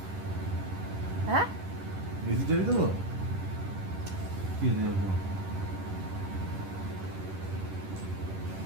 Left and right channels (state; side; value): late; left; 10 ms